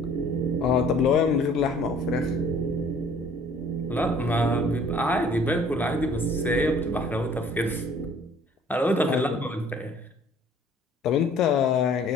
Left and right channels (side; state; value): both; normal; correlation 0.54